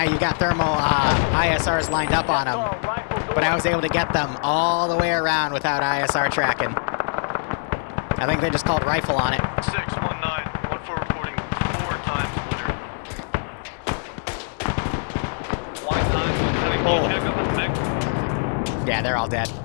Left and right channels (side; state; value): right; silent; digital silence